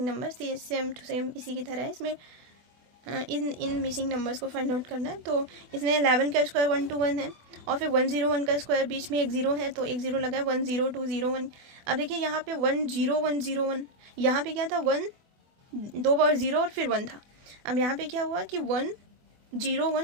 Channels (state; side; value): late; left; 24 ms